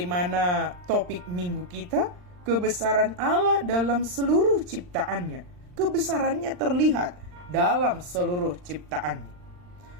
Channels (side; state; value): left; late; 39 ms